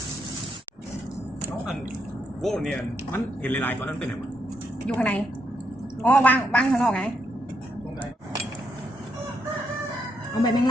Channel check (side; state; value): both; normal; correlation 0.79